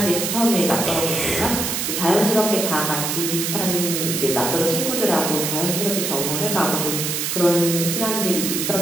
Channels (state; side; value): noise; right; hiss, 1 dB below the sound